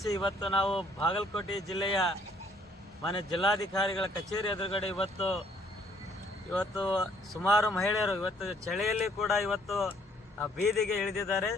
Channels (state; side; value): normal; both; correlation 0.64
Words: ಇವತ್ತು ನಾವು ಬಾಗಲಕೋಟೆ ಜಿಲ್ಲೆಯ ಮಾನ್ಯ ಜಿಲ್ಲಾಧಿಕಾರಿಗಳ ಕಚೇರಿ ಎದುರುಗಡೆ ಇವತ್ತು ಸುಮಾರು ಮಹಿಳೆಯರು ಇವತ್ತು ಚಳಿಯಲ್ಲಿ ಕೂಡ ಇವತ್ತು ಬೀದಿಗೆ ಇಳಿದಿದ್ದಾರೆ.